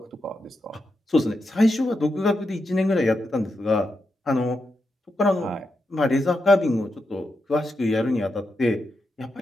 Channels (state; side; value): normal; both; correlation 0.86